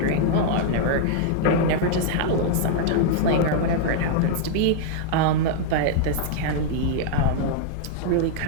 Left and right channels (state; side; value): different; both; correlation -0.01